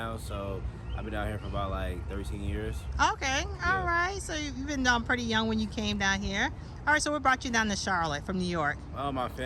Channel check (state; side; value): identical; both; correlation 1.00